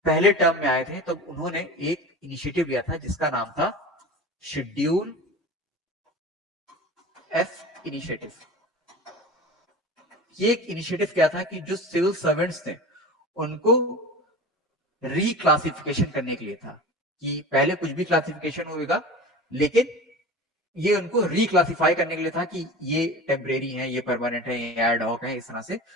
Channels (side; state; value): both; normal; correlation 0.34